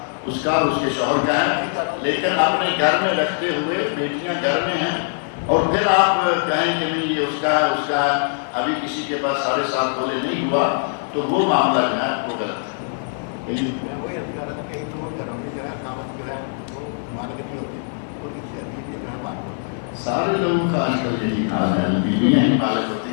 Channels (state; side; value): silent; right; 60 dB below the other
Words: اس کا اور اس کے شوہر کا ہے. لیکن اپنے گھر میں رکھتے ہوئے بیٹیاں گھر میں ہیں، اور پھر آپ کہیں کہ نہیں یہ اس کا ہے، اس کا ہے، ابھی کسی کے پاس 7.5 تولے نہیں ہوا، تو وہ معاملہ جو ہے وہ غلط ہے. وہی ابھی کہہ رہا تھا کہ ایک تو گھروں میں جو ہے قامت جو ہے وہ مالک نہیں ہوتی، اور کسی عزیز کے گھر بات ہوتی ہے. سارے لوگوں کا آج کل یہی حال ہے، بیویاں ہی مالک